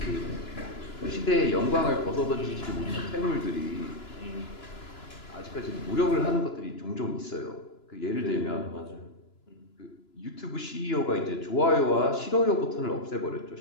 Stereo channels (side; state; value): right; late; 2.9 ms